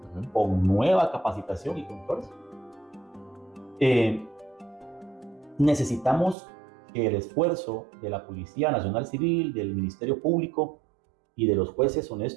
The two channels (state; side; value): drops out; left; at 6.4 s